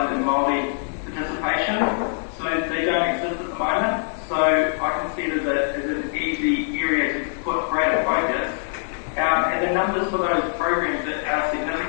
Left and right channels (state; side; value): silent; right; digital silence